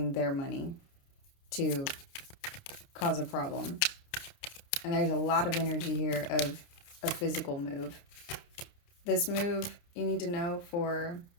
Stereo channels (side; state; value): right; late; 29 ms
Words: their money to cause a problem. And there's a lot of energy here of a physical move. This move, you need to know, for